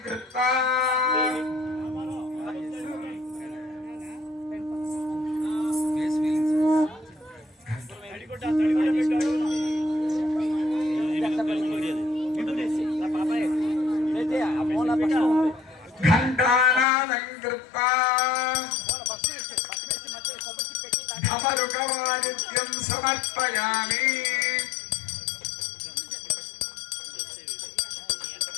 కృత్వా ఘంటానాదం కృత్వా ధమరుకవాదిత్యం సమర్పయామి.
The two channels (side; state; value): right; drops out; at 16.9 s